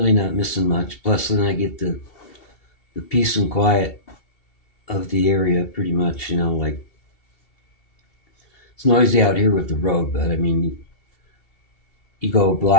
not missing much. Plus, then I get the peace and quiet of the area pretty much, like it's noisy out here with the road, but I mean, you go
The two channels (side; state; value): right; late; 2.7 ms